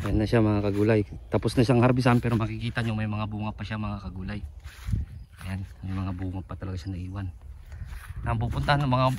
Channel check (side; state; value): both; identical; correlation 1.00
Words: Ayan na siya mga kagulay. Tapos na siyang harbisan pero makikita nyo may mga bunga pa siya mga kagulay. Ayan. May mga bunga pa talaga siya naiwan. Ang pupuntahan ng